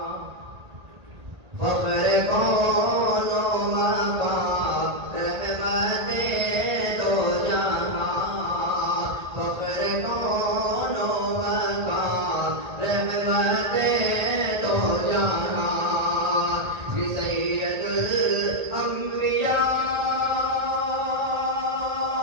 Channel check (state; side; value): late; left; 1.7 ms